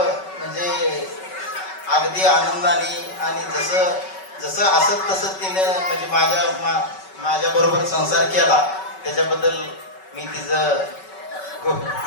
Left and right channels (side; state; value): right; late; 5.3 ms